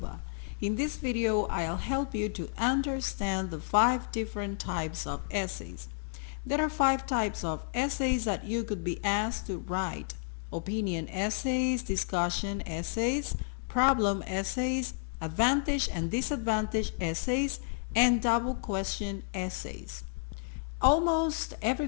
In this video, I'll help you to understand the 5 different types of essays. There are 5 types of essays that you could be asked to write: opinion essays, discussion essays, problem essays, advantage and disadvantage essays, and double question essays. Almost every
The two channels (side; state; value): right; silent; digital silence